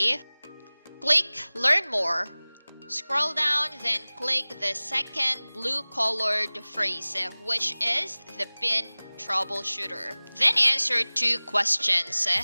Click Learn More. Scroll down, then click the second blue-colored phrase, which is the PIN troubleshooter. Then answer 2 questions.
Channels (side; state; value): both; inverted; correlation -1.00